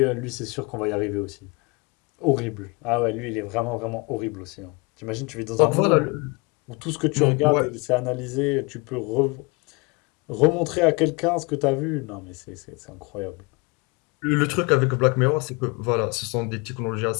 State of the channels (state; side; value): quieter; right; 28.5 dB